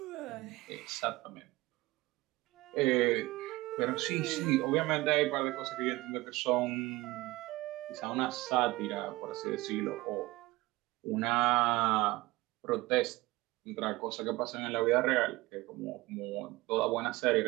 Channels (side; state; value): left; quieter; 20.1 dB